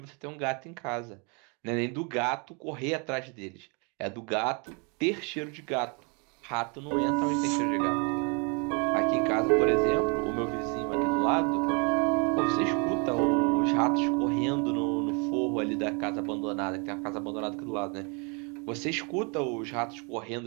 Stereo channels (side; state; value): left; quieter; 33.7 dB